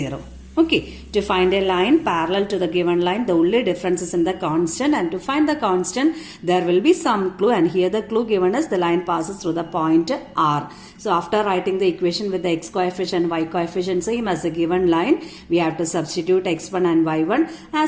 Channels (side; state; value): both; identical; correlation 1.00